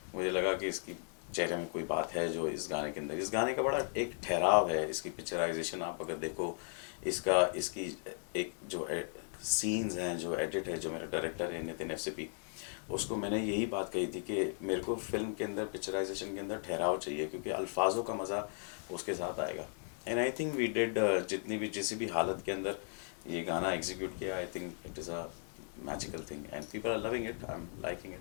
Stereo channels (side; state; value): right; silent; 53 dB below the other